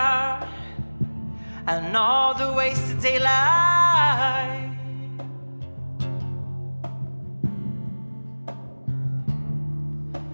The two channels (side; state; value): both; inverted; correlation -1.00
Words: and all the wasted daylight,